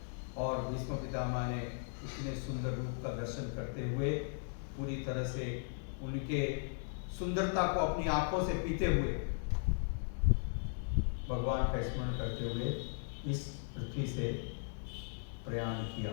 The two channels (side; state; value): right; silent; digital silence